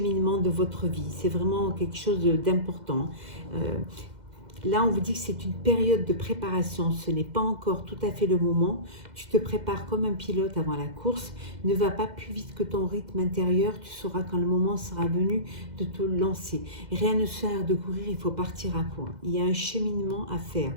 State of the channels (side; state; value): left; late; 2.0 ms